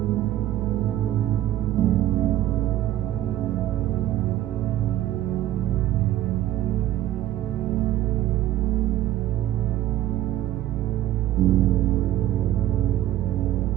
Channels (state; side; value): quieter; left; 13.4 dB